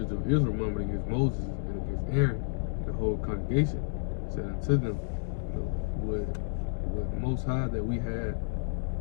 of Israel murmured against Moses and against Aaron, the whole congregation said unto them, you know, would the Most High that we had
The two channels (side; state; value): right; silent; digital silence